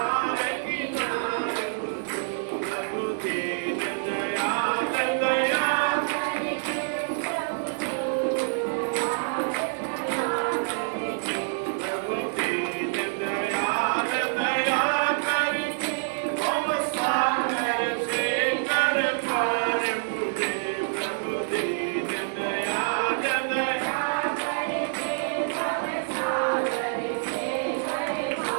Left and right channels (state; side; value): silent; left; digital silence